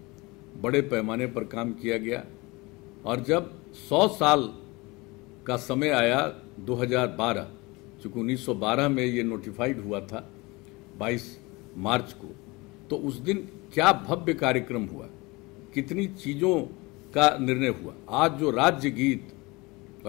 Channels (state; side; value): quieter; right; 24.2 dB